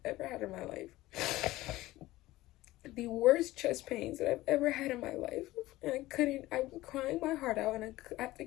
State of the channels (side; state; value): right; quieter; 17.5 dB